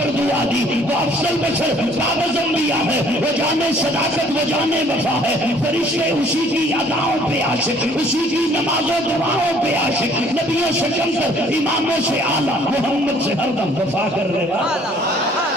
دعا دی، وہ افضل بشر کاغذ انبیاء ہے، وہ جانے صداقت، وہ جانے وفا ہے، فرشتے اسی کی اداؤں پہ عاشق، اسی کی نماز و دعاؤں پہ عاشق، نبیوں سے کم کر، اماموں سے اعلیٰ، محمد سے ہر دم وفا کرنے والا۔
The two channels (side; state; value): both; normal; correlation 0.58